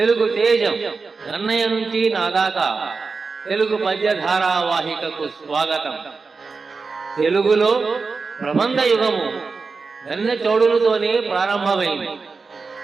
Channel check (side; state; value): left; quieter; 4.5 dB